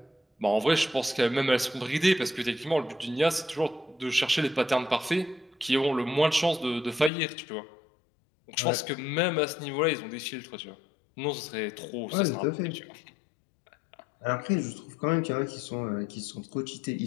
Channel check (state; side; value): drops out; right; at 7.1 s